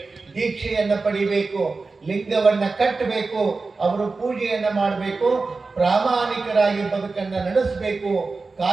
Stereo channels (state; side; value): quieter; left; 4.0 dB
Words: ದೀಕ್ಷೆಯನ್ನ ಪಡಿಬೇಕು, ಲಿಂಗವನ್ನ ಕಟ್ಟಬೇಕು, ಅವರು ಪೂಜೆಯನ್ನ ಮಾಡಬೇಕು, ಪ್ರಾಮಾಣಿಕರಾಗಿ ಬದುಕನ್ನ ನಡೆಸಬೇಕು,